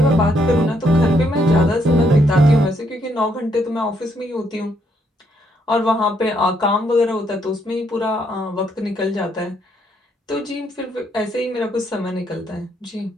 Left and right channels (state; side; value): normal; both; correlation 0.73